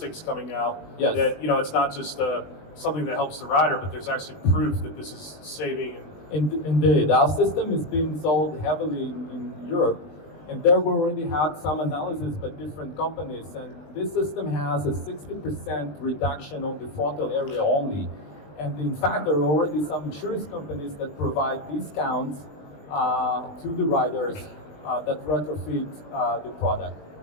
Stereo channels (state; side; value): late; right; 20 ms